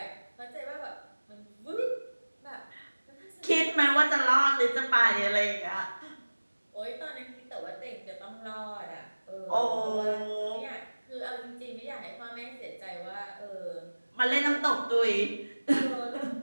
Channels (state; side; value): inverted; both; correlation -1.00